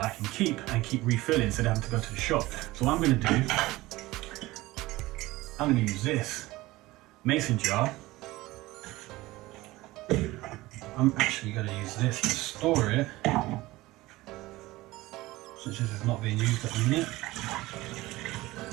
I can keep refilling instead of having to go to the shop. So what I'm going to do, I'm going to use this mason jar. I'm actually going to use this to store it, since this is not being used at the minute.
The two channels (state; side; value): quieter; left; 19.0 dB